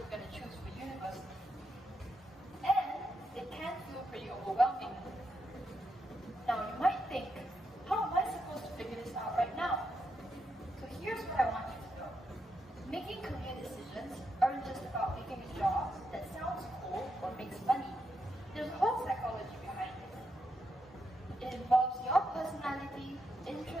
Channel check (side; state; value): both; normal; correlation 0.82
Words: going to choose for university. And it can feel pretty overwhelming. Now, you might think, how am I supposed to figure this out right now? So here's what I want you to know. Making career decisions aren't just about picking a job that sounds cool or makes money. There's a whole psychology behind it. It involves your personality,